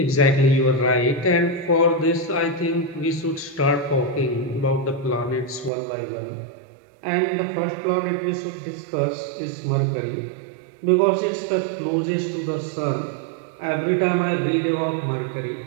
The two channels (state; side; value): drops out; left; at 5.7 s